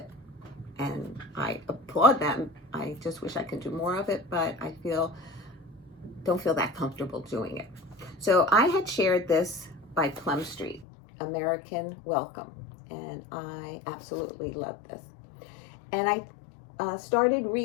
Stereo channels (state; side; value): drops out; right; at 10.9 s